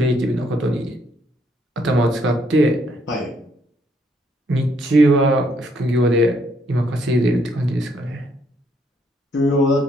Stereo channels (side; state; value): both; normal; correlation 0.71